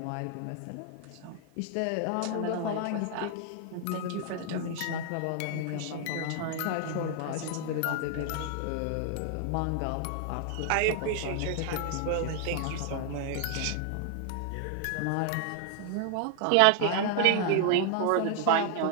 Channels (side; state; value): both; different; correlation 0.00